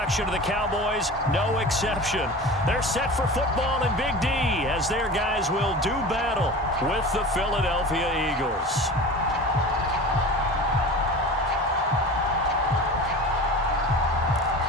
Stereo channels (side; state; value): both; normal; correlation 0.35